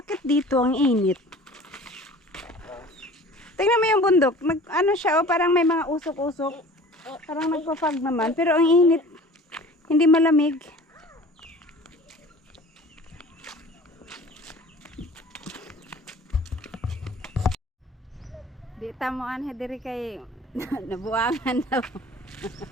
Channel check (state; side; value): normal; both; correlation 0.44